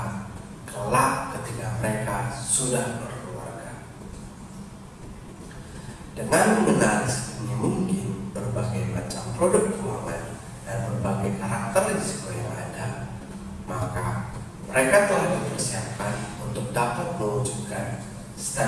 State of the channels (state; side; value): identical; both; correlation 1.00